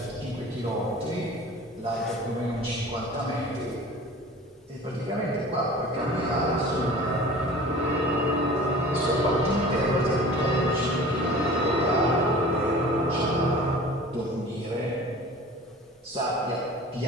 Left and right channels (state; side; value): normal; both; correlation 0.41